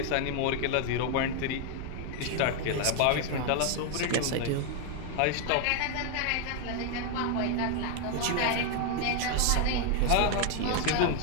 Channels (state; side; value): different; both; correlation 0.00